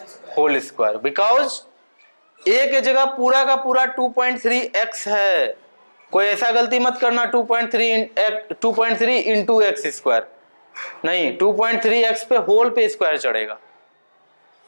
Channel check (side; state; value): both; inverted; correlation -1.00